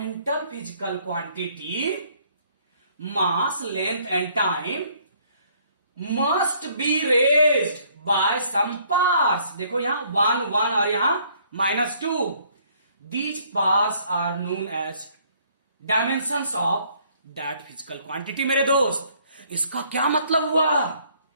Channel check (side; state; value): both; inverted; correlation -0.63